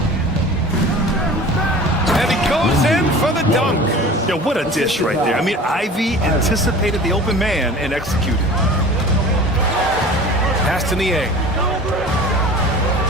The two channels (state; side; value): normal; both; correlation 0.40